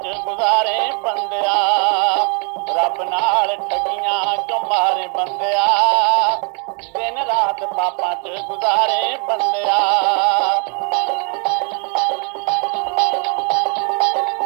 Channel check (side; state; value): left; quieter; 36.1 dB